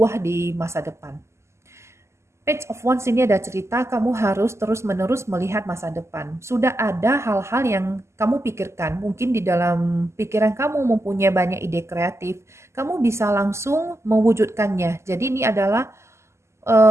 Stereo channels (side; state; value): left; late; 0.13 ms